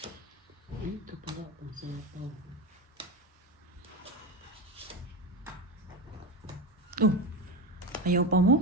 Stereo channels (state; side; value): normal; both; correlation 0.19